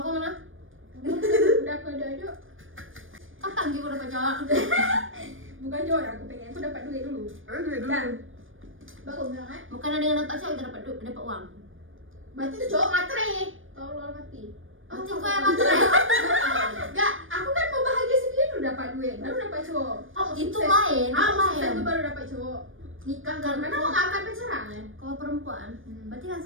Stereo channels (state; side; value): late; left; 0.58 ms